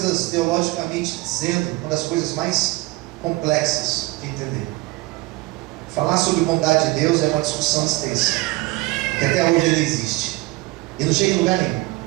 teologicamente dizendo, uma das coisas mais complexas de entender. Falar sobre bondade de Deus é uma discussão extensa, que até hoje ele existe e não chega em lugar nenhum.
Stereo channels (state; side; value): quieter; left; 21.4 dB